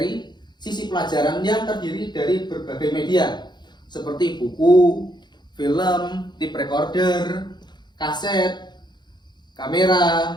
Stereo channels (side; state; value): right; late; 0.21 ms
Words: sisi pelajaran yang terdiri dari berbagai media seperti buku, film, tape recorder, kaset,